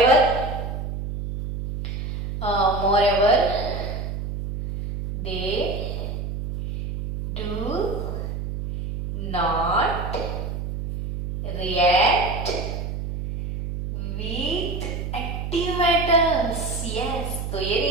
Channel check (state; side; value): noise; right; hum, 5 dB below the sound